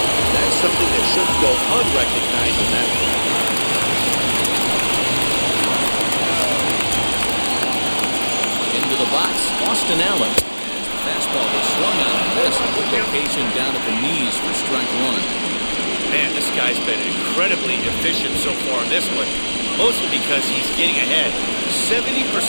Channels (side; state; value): both; inverted; correlation -1.00